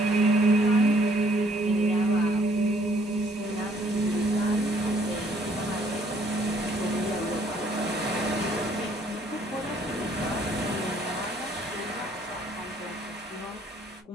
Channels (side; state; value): both; normal; correlation 0.64